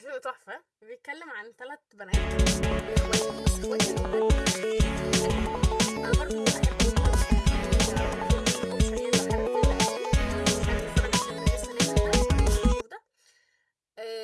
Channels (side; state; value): both; identical; correlation 1.00